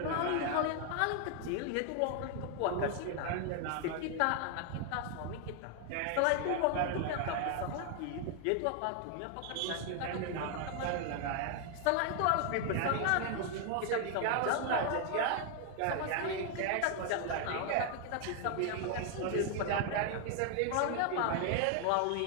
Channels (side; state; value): both; different; correlation 0.00